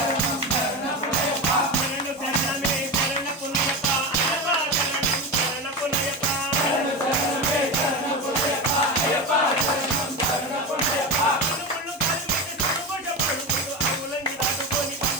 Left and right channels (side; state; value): both; normal; correlation 0.21